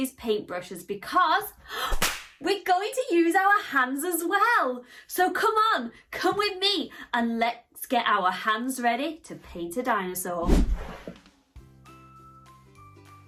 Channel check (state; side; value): identical; both; correlation 1.00